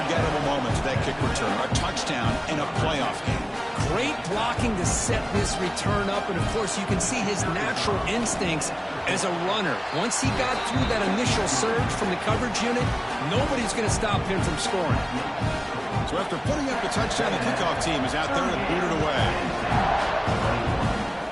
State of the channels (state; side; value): identical; both; correlation 1.00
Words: moment to that kick return. A touchdown in a playoff game. Great blocking to set this return up, and of course you can see his natural instincts as a runner. Once he got through that initial surge from the coverage unit, nobody's going to stop him from scoring. So after putting up the touchdown, the kickoff team is out there to boot it away.